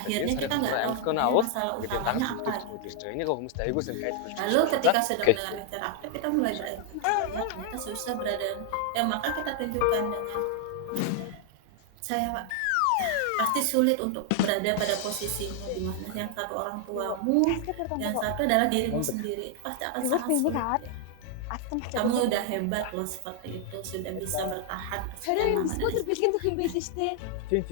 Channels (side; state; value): both; different; correlation 0.00